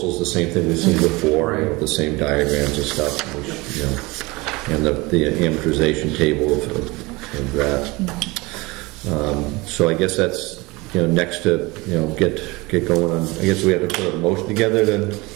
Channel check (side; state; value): left; quieter; 23.5 dB